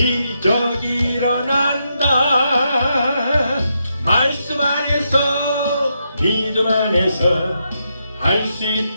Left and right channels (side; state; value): both; inverted; correlation -0.81